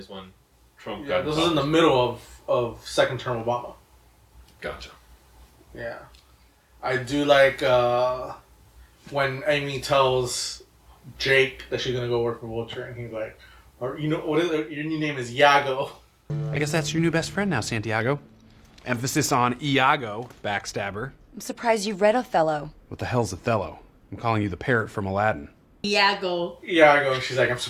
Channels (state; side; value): identical; both; correlation 1.00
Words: when Trump Yeah, got this was in the middle of second term Obama. Gotcha. Yeah. I do like when Amy tells Jake that she's gonna go work for Vulture, and he's like, or you know, what is it? Your new name is Iago. I guess that's your new best friend now, Santiago. Emphasis on Iago, backstabber. I'm surprised you read Othello. What the hell's Othello? I'm calling you the parrot from Aladdin. Iago. Iago. She's like, I'm